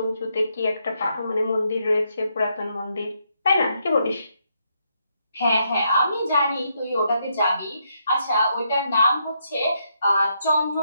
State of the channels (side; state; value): both; inverted; correlation -0.78